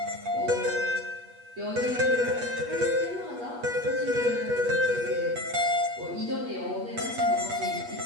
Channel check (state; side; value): late; left; 8.3 ms